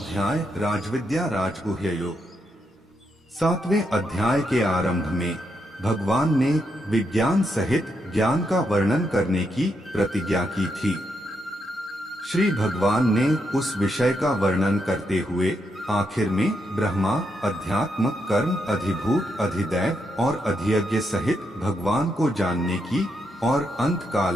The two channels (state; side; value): normal; both; correlation 0.81